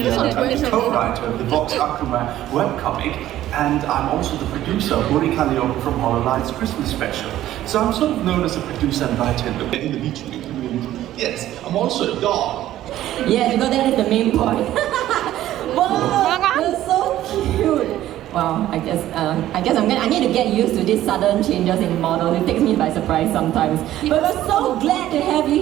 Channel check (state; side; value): quieter; left; 13.5 dB